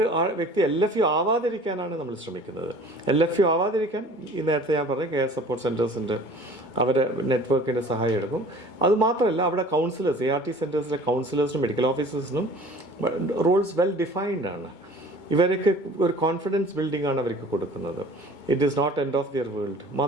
വ്യക്തി LFU ആവാതിരിക്കാനാണ് നമ്മൾ ശ്രമിക്കുന്നത്. LFU ആവാതിരിക്കാൻ ഈ നേരത്തെ ഞാൻ പറഞ്ഞ കെയർ സപ്പോർട്ട് സെൻറ്റേഴ്സിൻ്റെ അവരെ നെറ്റ്വർക്കിൻ്റെ സഹായം എടുക്കും. അതുമാത്രമല്ല അവിടെ കൗൺസിലേഴ്സ്, ART സെൻറ്റേഴ്സിലെ കൗൺസിലേഴ്സിനും മെഡിക്കൽ ഓഫീസേഴ്സിനും റോൾസ് വെൽ ഡിഫൈൻഡ് ആണ്. ഇവർക്ക് ഒരു കോൺഫിഡൻസ് ബിൽഡിംഗ് ആണ് അവർക്ക് കൊടുക്കുന്നത്. It is not end of their world.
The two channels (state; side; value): late; right; 2.2 ms